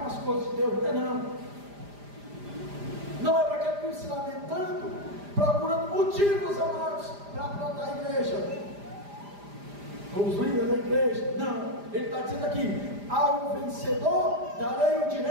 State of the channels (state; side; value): late; left; 5.0 ms